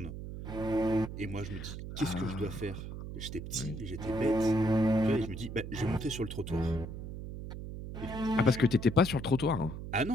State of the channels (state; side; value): noise; right; hum, 8 dB below the sound